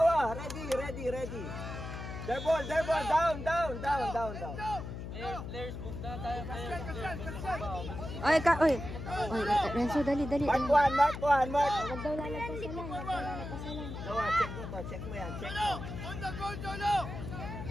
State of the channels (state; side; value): noise; left; hum, 8 dB below the sound